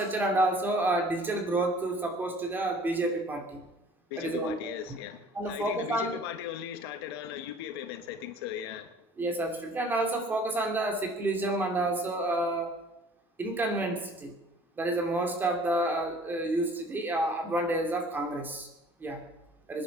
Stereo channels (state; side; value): normal; both; correlation 0.51